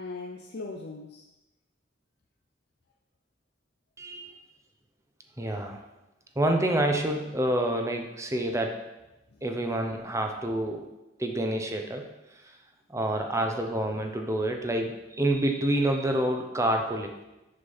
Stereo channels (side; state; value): both; normal; correlation 0.60